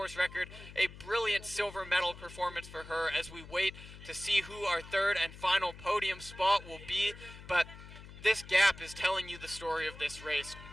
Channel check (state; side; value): noise; left; hum, 16 dB below the sound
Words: record. A brilliant silver medal performance for her as we wait to see who our third and final podium spot will be. But this gap is telling you the story of this race.